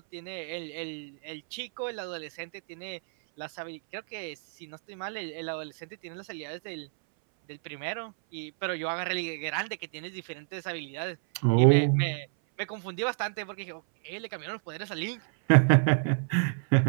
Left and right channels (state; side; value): silent; left; 58 dB below the other